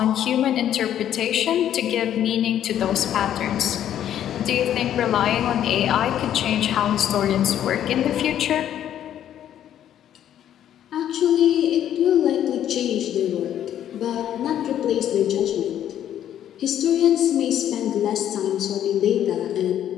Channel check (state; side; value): quieter; right; 10.7 dB